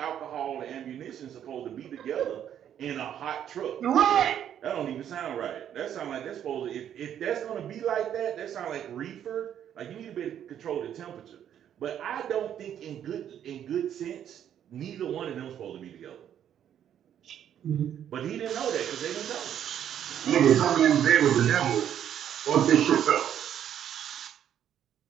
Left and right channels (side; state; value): left; quieter; 9.8 dB